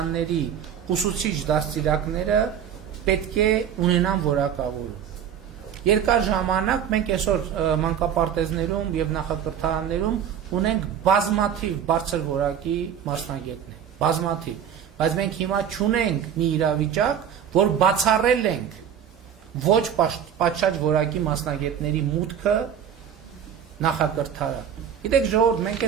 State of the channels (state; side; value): quieter; left; 8.7 dB